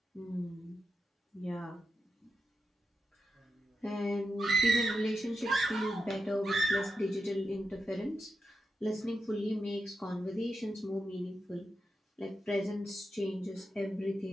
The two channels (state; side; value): normal; both; correlation 0.88